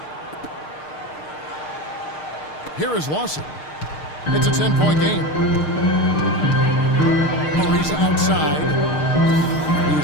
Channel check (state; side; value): late; right; 6.5 ms